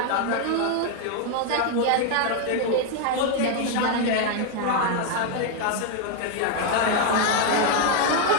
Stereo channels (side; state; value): both; different; correlation 0.01